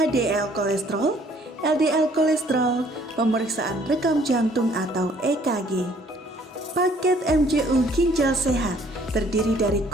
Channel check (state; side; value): normal; both; correlation 0.60